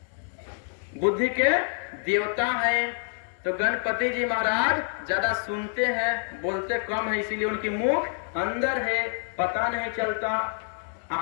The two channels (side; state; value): right; silent; 60 dB below the other